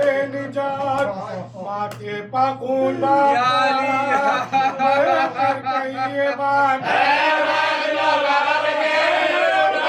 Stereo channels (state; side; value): identical; both; correlation 1.00